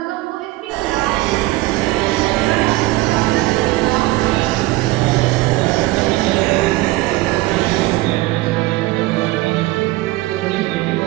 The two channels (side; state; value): left; quieter; 19.4 dB